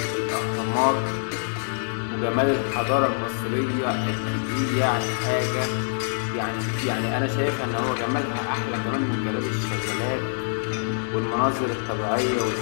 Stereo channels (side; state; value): right; silent; digital silence